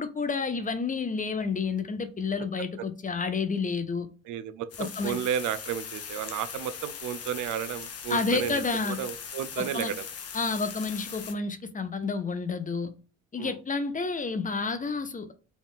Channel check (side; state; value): both; normal; correlation 0.24